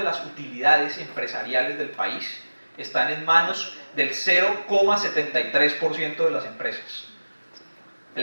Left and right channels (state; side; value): inverted; both; correlation -1.00